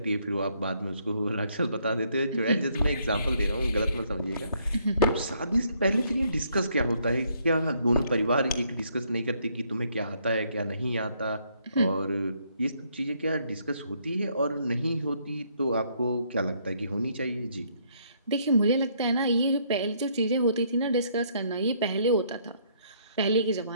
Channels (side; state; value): both; inverted; correlation -0.69